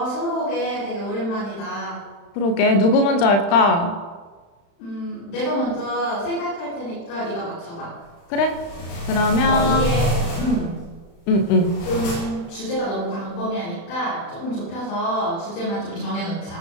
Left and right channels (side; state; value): right; late; 35 ms